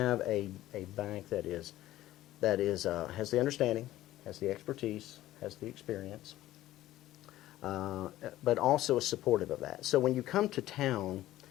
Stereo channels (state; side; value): quieter; right; 14.8 dB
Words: a bank that has the understanding, has the expertise, has the experience, but also is supportive of that. So when you come to town,